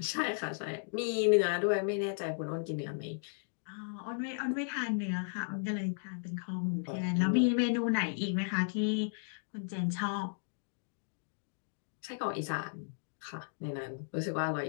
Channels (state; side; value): silent; right; digital silence